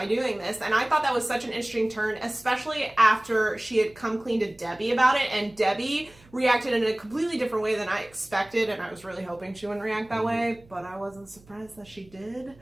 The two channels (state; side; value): noise; right; hum, 26 dB below the sound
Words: doing this. And I thought that was such an interesting turn, especially after she had come clean to Debbie about it. And Debbie reacted in a completely different way than I expected. And I was really hoping she wouldn't react that way, but I wasn't surprised that she did.